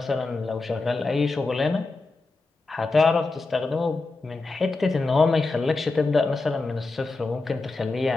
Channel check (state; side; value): quieter; right; 3.5 dB